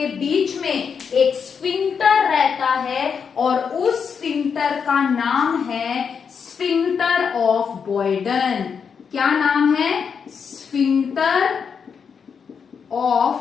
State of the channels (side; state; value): right; quieter; 6.5 dB